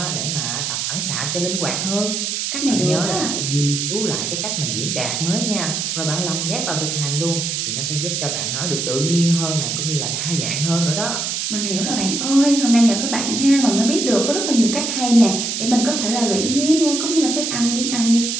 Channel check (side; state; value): right; noise; hiss, 1 dB below the sound